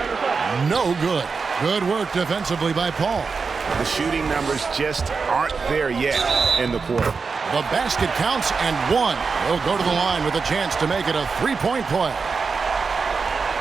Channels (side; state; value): left; quieter; 4.9 dB